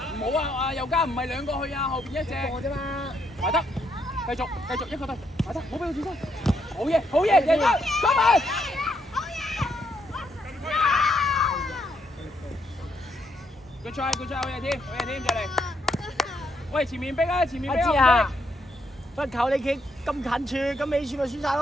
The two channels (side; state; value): both; normal; correlation 0.75